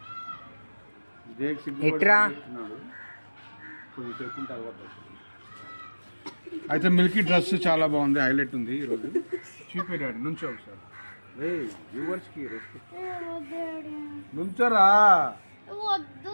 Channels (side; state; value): both; inverted; correlation -1.00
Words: జేక్ సిగ్గుపడి కొద్దిసేపు ఉంటే అలవాటు. అయితే మిల్కీ డ్రెస్ చాలా బాగుంది, హైలైట్ ఉంది ఈరోజు. చూపెట్టాడు నుంచో ఒకసారి. రే వ్యూవర్స్కి రెస్పెక్ట్ నుంచోరా.